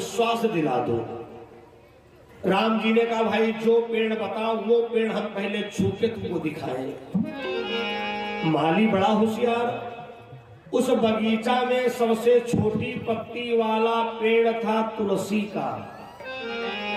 दिला दो। राम जी ने कहा भाई जो पेड़ बताओ वो पेड़ हम पहले छू के तुमको दिखाएं। माली बड़ा होशियार, उस बगीचा में सबसे छोटी पत्ती वाला पेड़ था तुलसी का।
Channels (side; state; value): both; identical; correlation 1.00